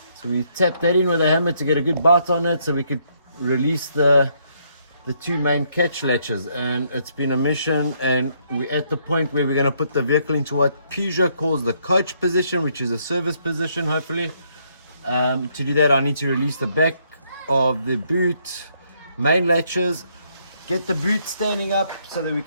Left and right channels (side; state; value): both; inverted; correlation -0.72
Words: So we tapped that in with a hammer to get a good bite on it so we could release the two main catch latches, and it's been a mission, and we're at the point where we're going to put the vehicle into what Peugeot calls the coach position, which is a service position hopefully. To do that I need to release the back of the boot main latches, get the boot standing up so that we